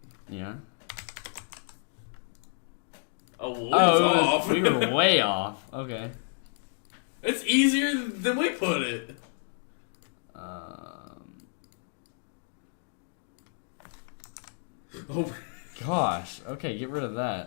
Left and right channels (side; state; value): right; silent; 57 dB below the other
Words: Yeah. Off. We were way off. Okay. It's easier than we put it. Gosh. Okay, get rid of